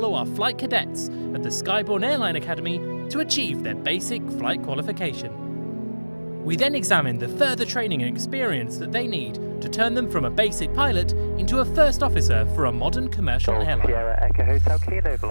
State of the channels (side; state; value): both; inverted; correlation -1.00